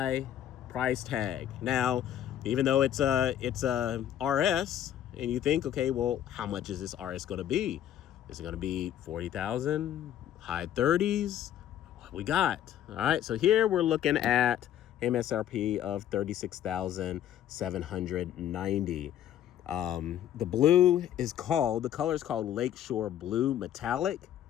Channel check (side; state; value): right; quieter; 11.0 dB